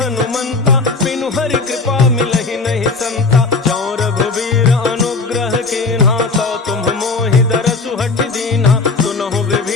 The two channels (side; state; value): right; quieter; 4.0 dB